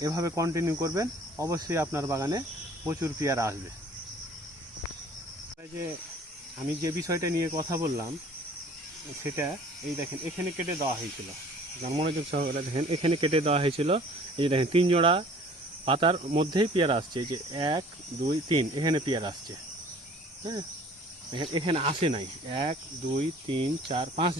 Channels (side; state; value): both; normal; correlation 0.50